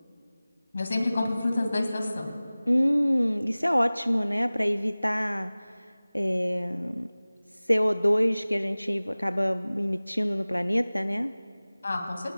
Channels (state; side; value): inverted; both; correlation -0.99